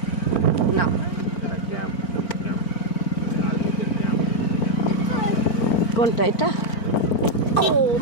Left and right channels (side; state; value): right; late; 4.4 ms